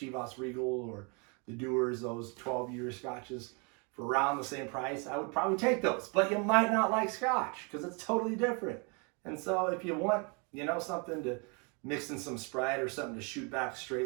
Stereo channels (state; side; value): quieter; left; 33.1 dB